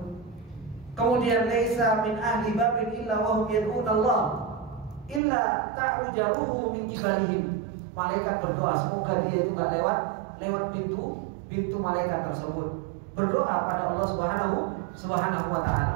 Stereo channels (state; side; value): drops out; left; at 5.2 s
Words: Kemudian laisa min ahli babin illa wa hum yad'una Allah illa ta'rujaruhu min kibalihim. Malaikat berdoa semoga dia itu enggak lewat pintu malaikat tersebut. Berdoa pada Allah Subhanahu wa